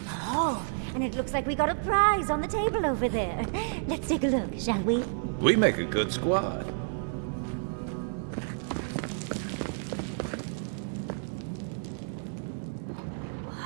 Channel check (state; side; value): silent; left; digital silence